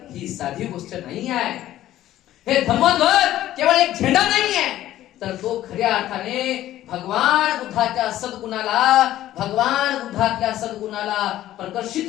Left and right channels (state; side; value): quieter; right; 13.7 dB